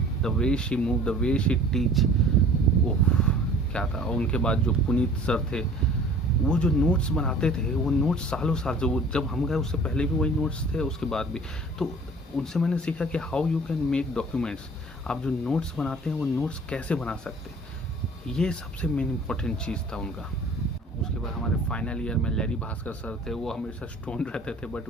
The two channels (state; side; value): normal; both; correlation 0.48